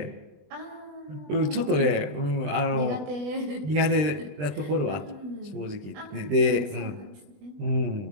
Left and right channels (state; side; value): late; left; 20 ms